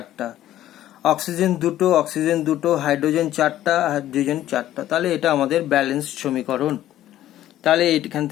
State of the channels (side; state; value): right; quieter; 13.1 dB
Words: অক্সিজেন দুটো, হাইড্রোজেন 4টা, হাইড্রোজেন 4টা। তাহলে এটা আমাদের ব্যালেন্স সমীকরণ। তাহলে এখান